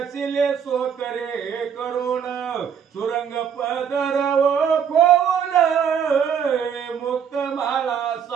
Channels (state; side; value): quieter; left; 7.7 dB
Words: सो करे करुण सुरंग पदर खोल मुक्त माळा